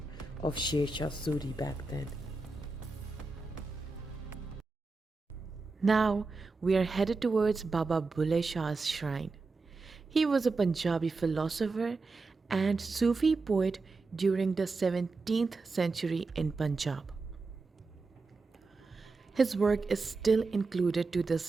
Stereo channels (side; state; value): left; quieter; 3.8 dB